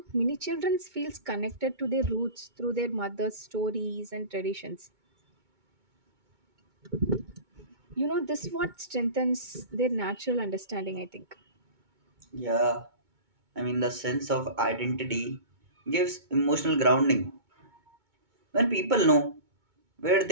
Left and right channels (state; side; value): late; left; 2.2 ms